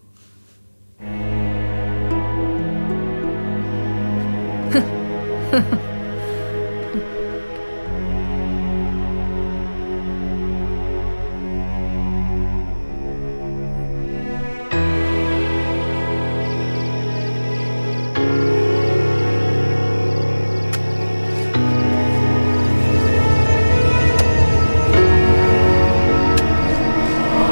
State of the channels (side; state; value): both; inverted; correlation -1.00